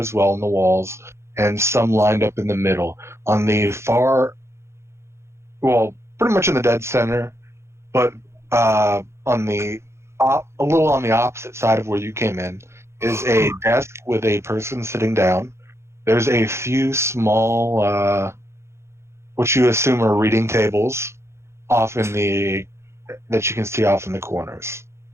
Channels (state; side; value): late; left; 0.13 ms